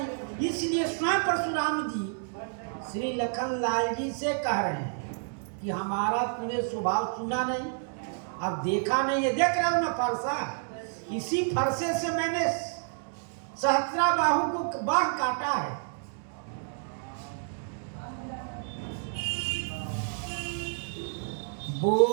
इसलिए स्वयं परशुराम जी श्री लखन लाल जी से कह रहे हैं कि हमारा तूने स्वभाव सुना नहीं, अब देखा नहीं है, देख रहे हो ना फरसा, इसी फरसे से मैंने सहस्रा बाहु को बाह काटा है।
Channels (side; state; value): left; silent; 58 dB below the other